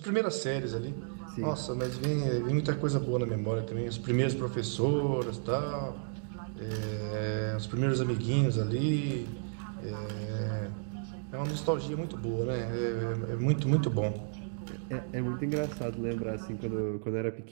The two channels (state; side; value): silent; left; digital silence